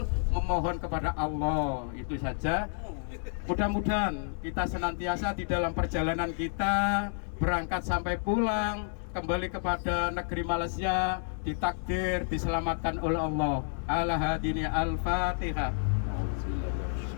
memohon kepada Allah. Itu saja. Mudah-mudahan kita senantiasa di dalam perjalanan kita berangkat sampai pulang kembali kepada negeri Malaysia ditakdir diselamatkan oleh Allah. Ala hadini al-Fatihah.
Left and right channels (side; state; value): right; silent; digital silence